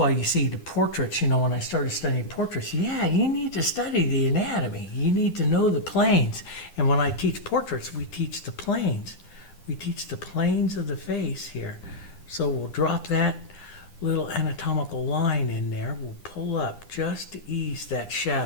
you see the portraits, you know, when I started studying portraits, yeah, you need to study the anatomy. You need to know the planes. And when I teach portraits, we teach the planes. We teach the planes of the face here. So we'll drop that little anatomical line in there. We'll pull up just to ease that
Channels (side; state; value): right; late; 10 ms